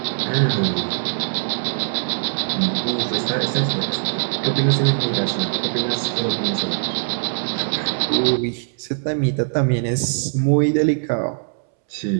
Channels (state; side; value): silent; left; 64 dB below the other